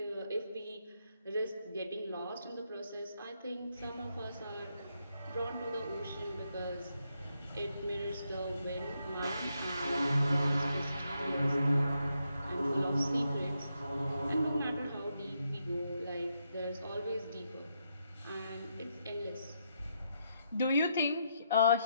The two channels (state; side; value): inverted; both; correlation -0.79